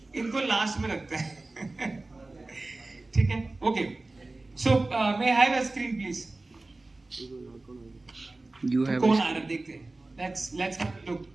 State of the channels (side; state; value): left; quieter; 3.1 dB